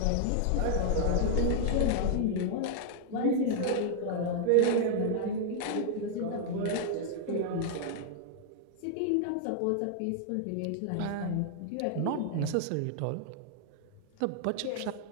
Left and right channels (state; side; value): different; both; correlation -0.01